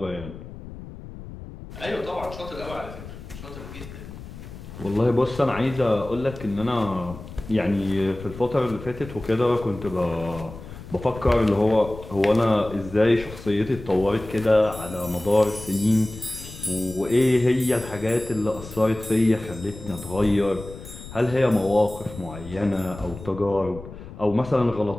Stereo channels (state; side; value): noise; left; rumble, 14 dB below the sound